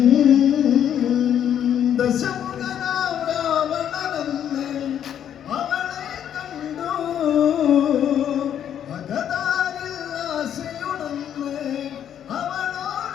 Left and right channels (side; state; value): right; quieter; 9.6 dB